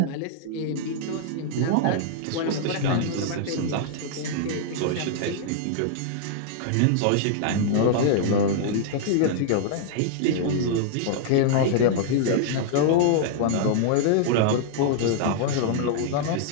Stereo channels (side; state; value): both; different; correlation -0.01